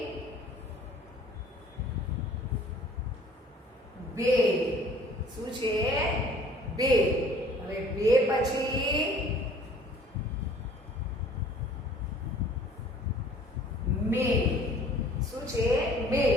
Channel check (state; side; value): normal; both; correlation 0.53